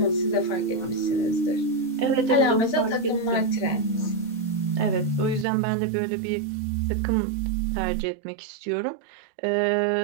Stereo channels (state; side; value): drops out; left; at 5.5 s